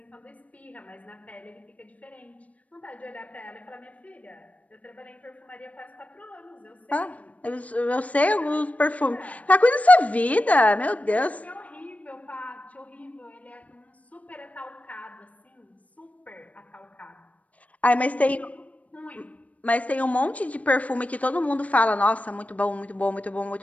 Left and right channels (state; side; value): late; right; 0.069 ms